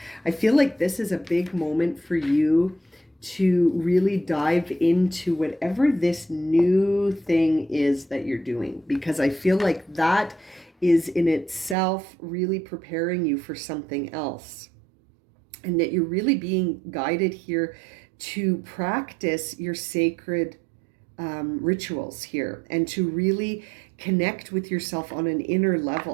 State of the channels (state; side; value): drops out; left; at 11.8 s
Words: I feel like this is a big moment for you to really dive into whatever this new thing is that you're doing, because I feel like that is in itself really preparing you for something else, and that you're really being guided here to practice your sacred rituals here and to really connect with yourself on an inner